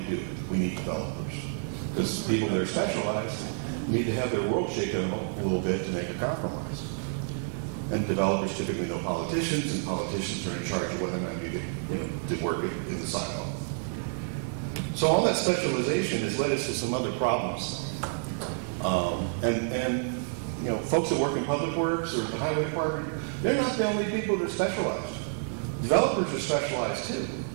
do it. We need developers. Because people that are specialized need to have their world shaken a little bit to make a compromise. And developers typically know politicians, and politicians are in charge of whether or not you get to work in the silo. So all that specialization has led us to some other problems. Folks that work in public works or the highway department, they're not the only people that are specialized. Developers are specialized too.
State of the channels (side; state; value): left; silent; digital silence